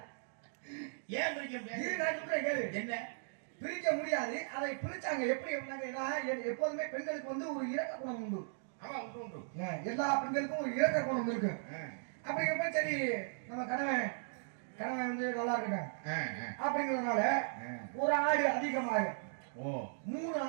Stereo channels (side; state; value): left; silent; digital silence